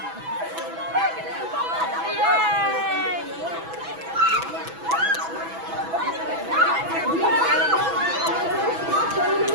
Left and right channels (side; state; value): left; late; 6.1 ms